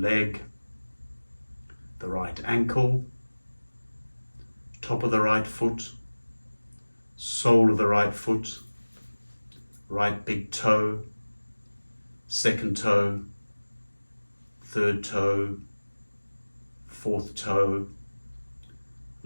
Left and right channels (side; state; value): both; inverted; correlation -1.00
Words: the right ankle, top of the right foot, sole of the right foot, right big toe, second toe, third toe, fourth toe,